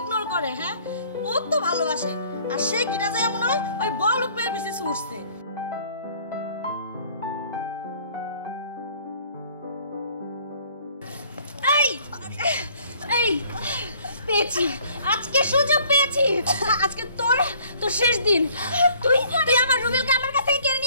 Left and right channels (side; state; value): both; inverted; correlation -0.57